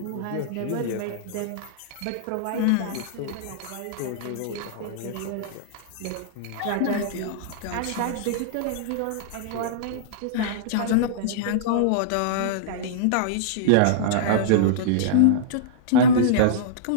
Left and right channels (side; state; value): both; different; correlation -0.03